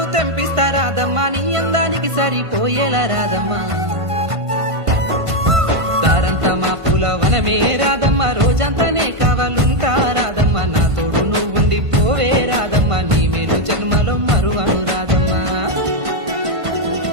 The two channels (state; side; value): late; left; 1.5 ms